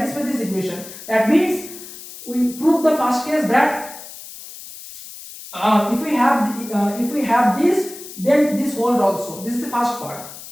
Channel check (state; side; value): noise; left; hiss, 14 dB below the sound